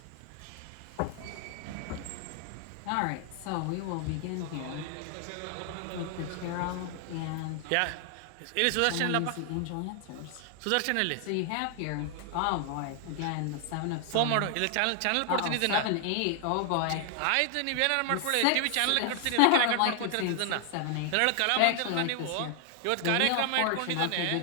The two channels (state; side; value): different; both; correlation 0.00